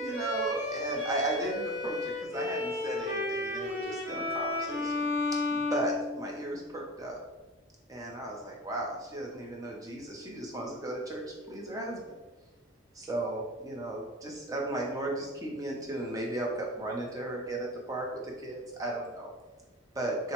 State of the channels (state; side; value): normal; both; correlation 0.32